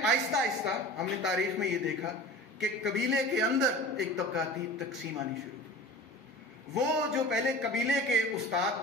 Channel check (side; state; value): both; normal; correlation 0.38